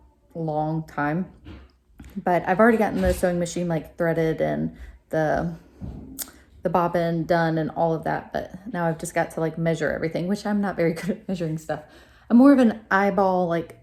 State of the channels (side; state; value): both; identical; correlation 1.00